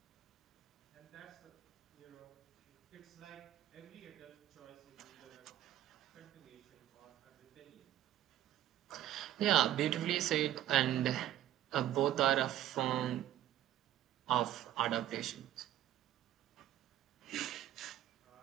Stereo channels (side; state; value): left; quieter; 12.8 dB